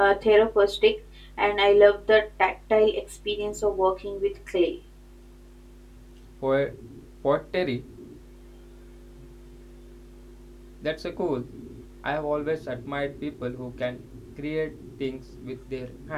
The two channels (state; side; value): identical; both; correlation 1.00